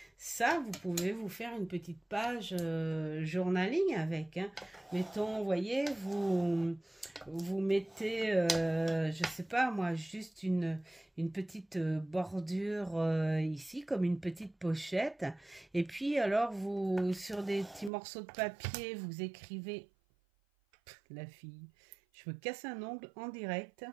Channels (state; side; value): drops out; left; at 17.9 s